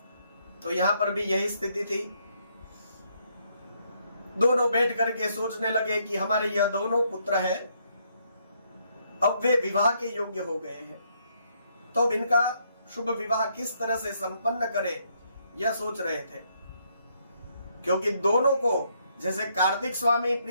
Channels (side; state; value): both; inverted; correlation -0.73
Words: तो यहाँ पर भी यही स्थिति थी। दोनों बैठ करके सोचने लगे कि हमारे यह दोनों पुत्र हैं, अब वे विवाह के योग्य हो गए हैं, तो अब इनका शुभ विवाह किस तरह से संपन्न करें, यह सोच रहे थे। क्योंकि दोनों को जैसे कार्तिक स्वामी